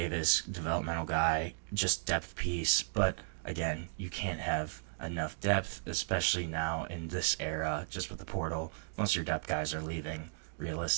developmental guy, just depth piece. But again, you can't have enough depth, especially now in this era, just with the portal. Most of your depth guys are leaving.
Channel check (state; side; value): silent; left; digital silence